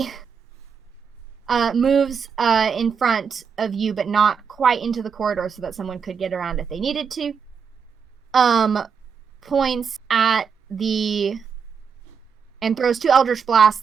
moves in front of you, but not quite into the corridor so that someone could get around if they needed to. Points at and throws 2 Eldritch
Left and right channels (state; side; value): quieter; left; 6.4 dB